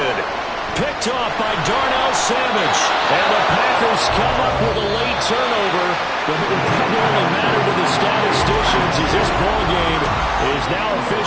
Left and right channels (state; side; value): identical; both; correlation 1.00